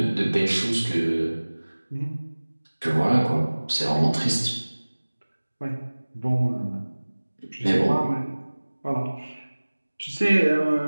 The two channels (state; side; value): inverted; both; correlation -1.00